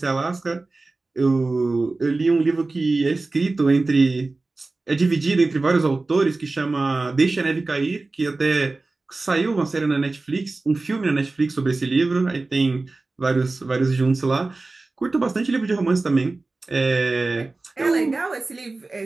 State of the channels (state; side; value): quieter; left; 3.4 dB